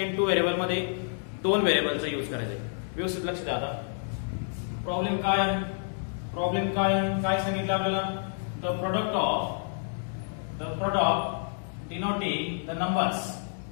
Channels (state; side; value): silent; right; digital silence